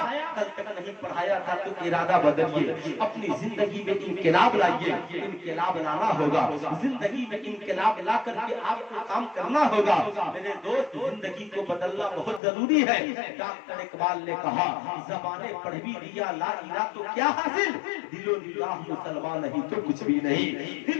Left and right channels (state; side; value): drops out; right; at 12.4 s